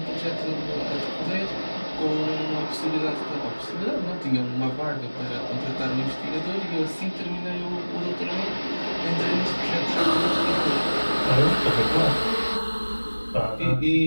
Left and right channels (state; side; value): inverted; both; correlation -1.00